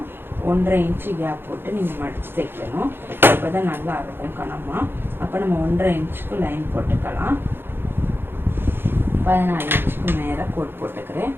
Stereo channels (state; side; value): late; left; 0.10 ms